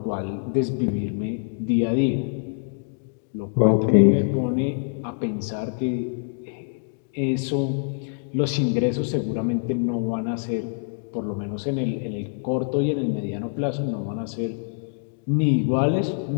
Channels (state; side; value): silent; right; digital silence